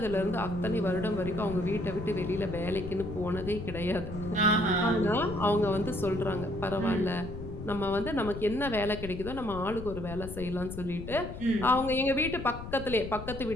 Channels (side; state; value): left; noise; rumble, 9 dB below the sound